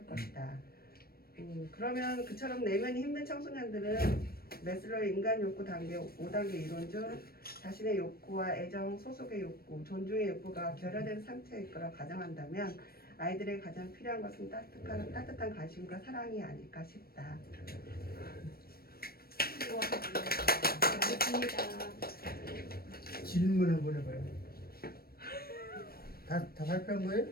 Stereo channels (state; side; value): late; right; 0.44 ms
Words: 것이다. 그러면 그처럼 내면이 힘든 청소년들은 메슬로의 인간 욕구 단계 5단계 이론 중 자신의 욕구와 애정, 소속의 욕구, 존중의 욕구가 결여된 상태일 거라 가정한다면 아이들에게 가장 필요한 것은 따뜻한 관심과 사랑이 아닐까 싶다. 알겠습니다. 질문 한번 해봐요. 다 발표한 거예요?